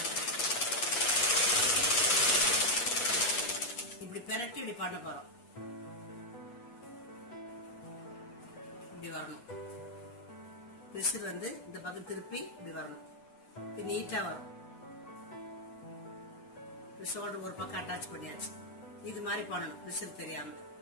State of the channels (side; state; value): right; late; 8.1 ms